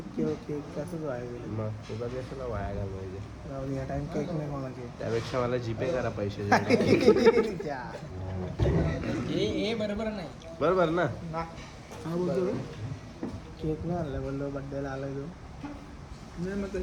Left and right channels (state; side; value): identical; both; correlation 1.00